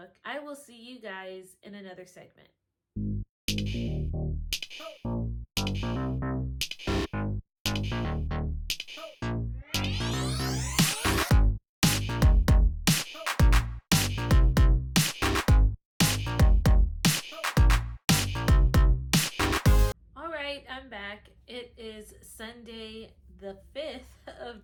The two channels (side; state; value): both; identical; correlation 1.00